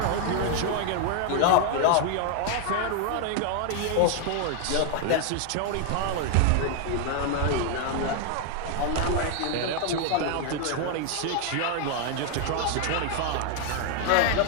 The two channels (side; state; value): both; different; correlation 0.00